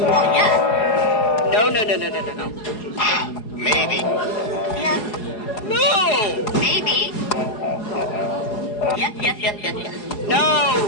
yes. No, no, no, no, no, no, no. Maybe. Yes. No. Maybe. Yes, yes, yes, yes, yes.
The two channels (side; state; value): right; late; 4.7 ms